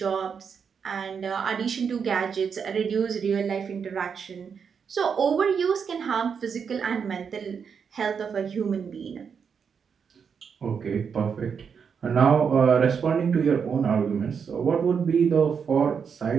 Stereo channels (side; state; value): left; quieter; 6.6 dB